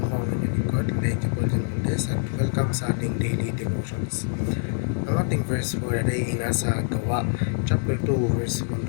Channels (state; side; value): silent; right; digital silence